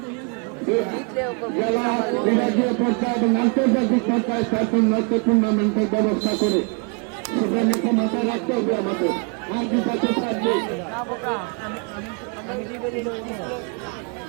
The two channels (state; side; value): quieter; left; 35.2 dB